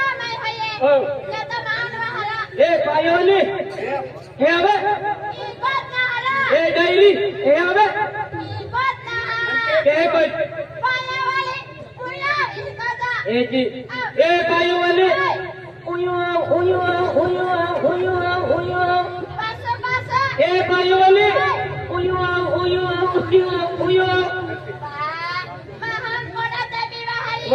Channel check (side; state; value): both; identical; correlation 1.00